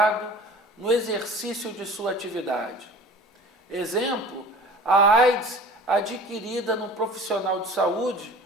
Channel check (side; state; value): both; normal; correlation 0.42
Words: no exercício de sua atividade. Exemplo, a AIDS adquirida no profissional de saúde